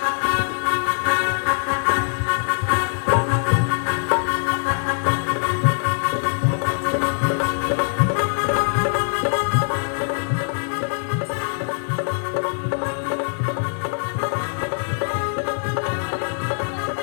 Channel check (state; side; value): silent; right; digital silence